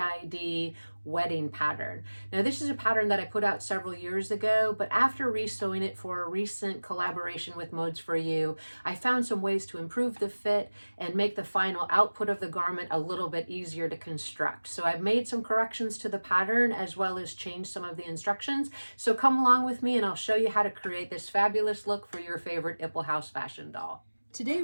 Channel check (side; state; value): both; inverted; correlation -1.00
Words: wedding pattern. Now this is a pattern that I put out several years ago, but after resewing it for a recent collaboration with Modes for You, I found some ways to improve the fit and make the final output of the garment a little bit easier to construct. So I've made some corrections to the pattern as well as changed some of the instructions. So come along with me and I'll show you how to create this fabulous look for your favorite Ipple House fashion doll. Today